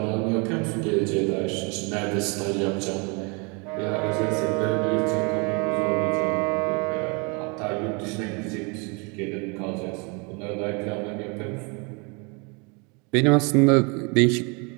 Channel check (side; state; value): left; quieter; 31.6 dB